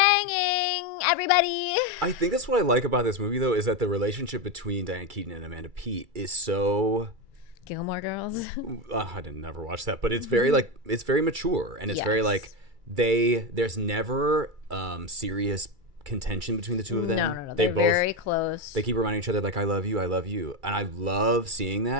everybody. I think that's what I like about this movie, though, is that the relationship between Diane Keaton and Amanda Peet is so... Gilmore Girls. I didn't never watch that, but it's very like it's very mature, and it's very like there's never serious contention between the two of them. No. They're both very close. They keep reminding each other like, I love you, and I love seeing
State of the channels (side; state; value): left; late; 2.3 ms